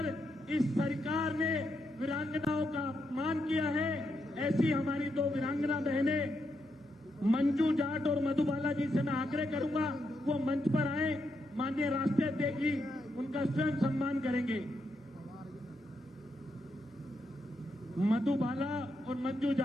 इस सरकार ने वीरांगनाओं का अपमान किया है। ऐसी हमारी दो वीरांगना बहनें मंजू जाट और मधुबाला जी से मैं आग्रह करूंगा वो मंच पर आए। माननीय राष्ट्रीय अध्यक्ष जी उनका स्वयं सम्मान करेंगे। मधुबाला और मंजू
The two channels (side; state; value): both; normal; correlation 0.81